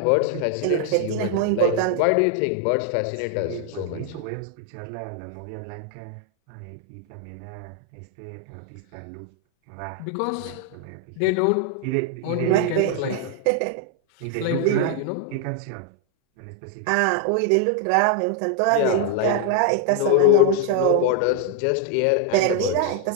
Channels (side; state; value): both; different; correlation 0.00